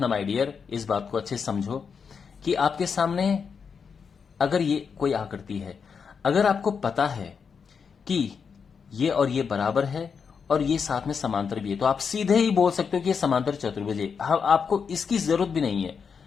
माय डियर, इस बात को अच्छे से समझो कि आपके सामने अगर ये कोई आकृति है, अगर आपको पता है कि ये और ये बराबर है और ये साथ में समांतर भी है, तो आप सीधे ही बोल सकते हो कि ये समांतर चतुर्भुज है। आपको इसकी जरूरत भी नहीं है,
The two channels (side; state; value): right; quieter; 6.1 dB